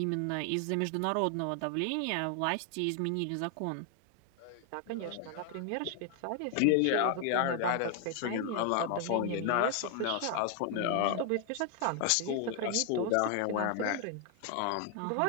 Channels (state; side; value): different; both; correlation 0.00